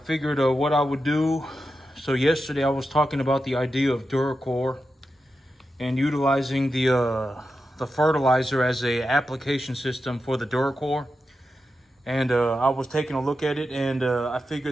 what I would do. So yesterday I was talking about the idea of Duracore and utilizing the fertilizer as a application system for the Duracore. And I was taking a look at it, and I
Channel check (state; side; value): normal; both; correlation 0.89